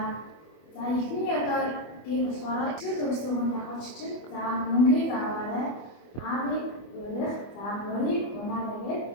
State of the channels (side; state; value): right; late; 24 ms